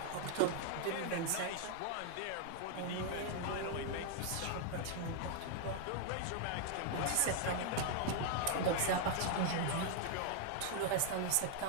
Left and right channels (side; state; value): both; different; correlation 0.00